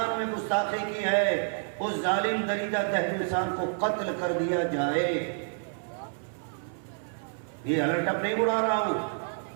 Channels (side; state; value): left; silent; 59 dB below the other